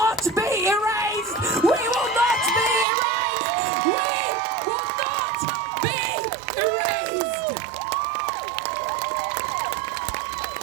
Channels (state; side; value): drops out; left; at 2.9 s